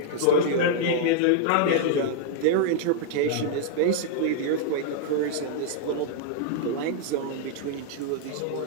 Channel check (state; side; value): different; both; correlation -0.01